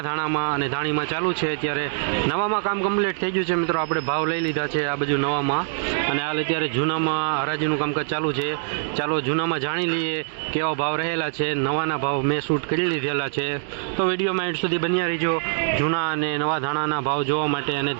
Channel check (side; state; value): left; silent; digital silence